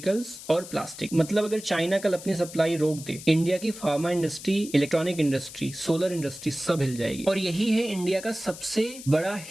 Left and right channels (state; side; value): noise; left; hiss, 14 dB below the sound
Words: और प्लास्टिक। मतलब अगर चाइना कल अपनी सप्लाई रोक दे, इंडिया की pharma industry, electronic industry, solar industry सब हिल जाएगी। और यही है इंडिया का सबसे बड़ा